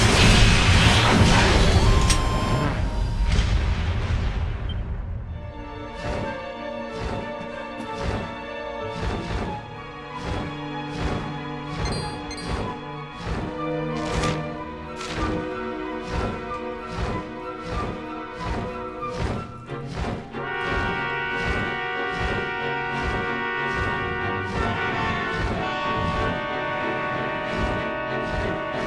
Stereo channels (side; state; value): both; identical; correlation 1.00